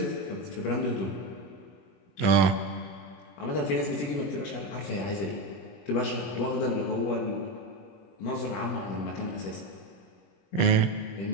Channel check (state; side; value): late; right; 21 ms